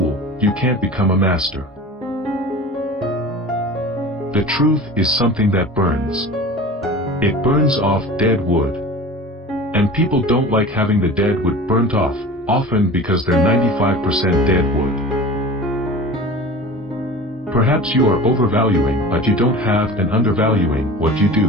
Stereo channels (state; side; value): normal; both; correlation 0.37